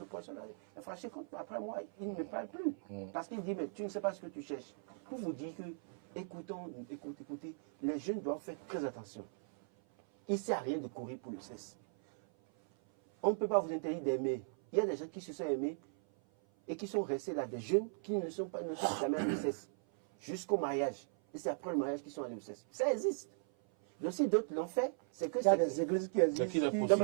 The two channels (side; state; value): left; silent; 52 dB below the other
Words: professeur-là est fâché contre moi. Après moi, il ne me parle plus. Parce qu'il dit, mais tu ne sais pas ce que tu cherches. Pour vous dire que, écoutez, les jeunes doivent faire très attention. Il ne sert à rien de courir pour le sexe. On ne peut pas vous interdire d'aimer. Il y a des gens qui se sont aimés et qui sont restés là, des jeunes qui ne sont jamais allés au CES jusqu'au mariage. Et c'est après le mariage qu'ils sont allés au CES. Ça existe. Donc si d'autres l'ont fait, c'est que il y a des églises qui existent. non, mais